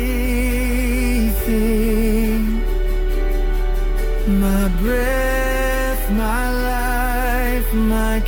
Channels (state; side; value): identical; both; correlation 1.00